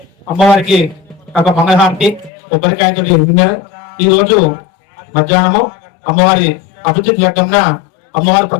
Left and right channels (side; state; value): right; drops out; at 2.3 s